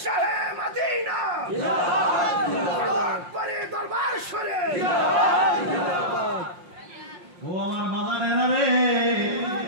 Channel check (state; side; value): late; left; 5.6 ms